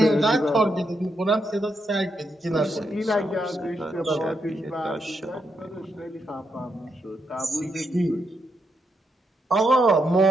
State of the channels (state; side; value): normal; both; correlation 0.81